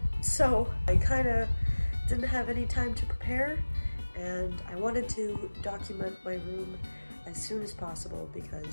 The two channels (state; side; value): inverted; both; correlation -1.00